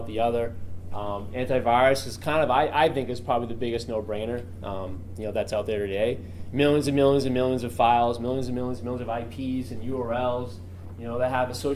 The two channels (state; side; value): identical; both; correlation 1.00